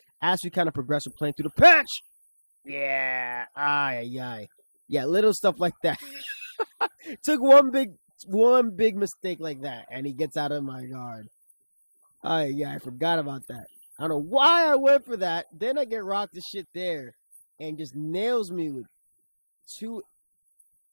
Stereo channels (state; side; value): inverted; both; correlation -1.00